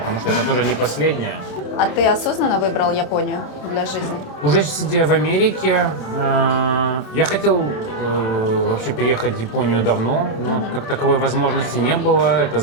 что это тоже не последнее. а ты осознанно выбрал Японию для жизни? Уже сидя в Америке, я хотел вообще переехать в Японию давно, но как таковой возможности не было, это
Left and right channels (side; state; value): right; late; 27 ms